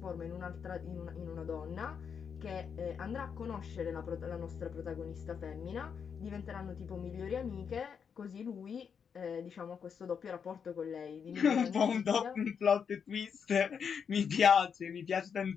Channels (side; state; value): right; quieter; 6.8 dB